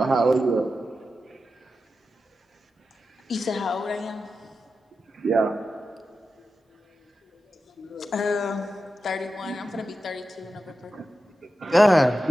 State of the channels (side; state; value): both; normal; correlation 0.91